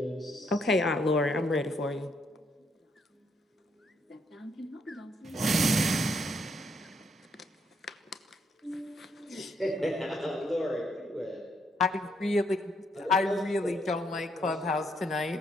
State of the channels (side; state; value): both; normal; correlation 0.74